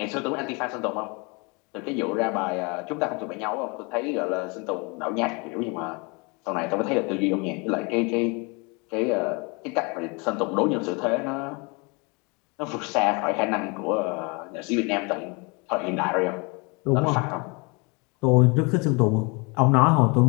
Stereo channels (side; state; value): right; quieter; 29.9 dB